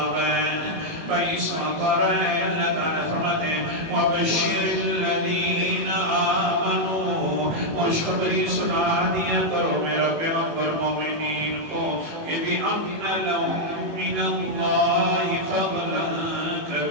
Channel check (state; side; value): late; left; 18 ms